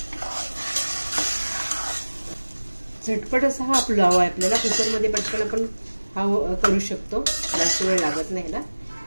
झटपट असा हा पुलाव आहे. आपल्याला कुकरमध्ये पटकन आपण हा करू शकतो, जास्त वेळ लागत नाही ना.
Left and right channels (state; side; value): inverted; both; correlation -1.00